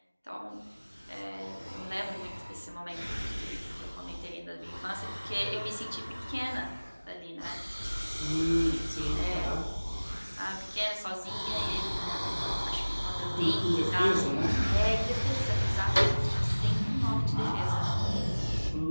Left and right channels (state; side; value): inverted; both; correlation -1.00